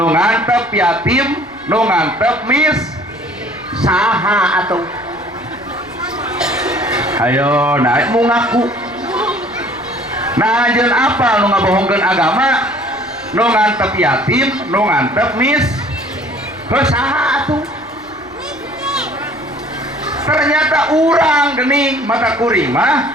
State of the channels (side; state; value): left; noise; rumble, 29 dB below the sound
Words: ngantep yatim nu ngantep mis saha atuh ayo naik mu ngaku nah anjeun apal nu ngabohongkeun agama nu ngantep yatim nu ngantep mis saha atuh ternyata urang gening mata kuring